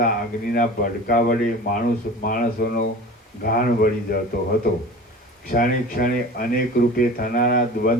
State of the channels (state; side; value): normal; both; correlation 0.38